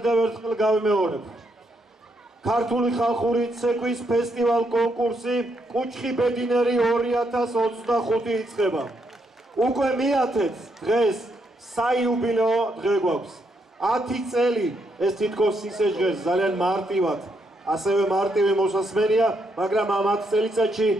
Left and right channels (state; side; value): normal; both; correlation 0.77